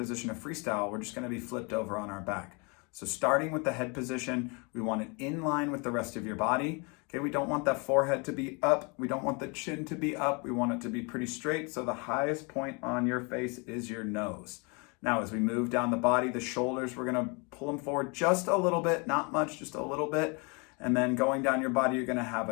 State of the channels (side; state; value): right; quieter; 31.5 dB